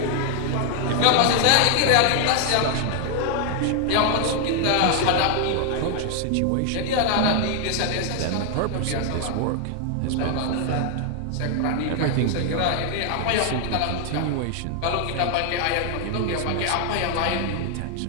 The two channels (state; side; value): different; both; correlation 0.00